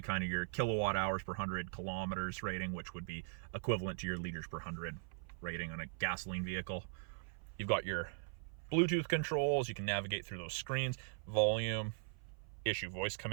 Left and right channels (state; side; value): silent; left; 51 dB below the other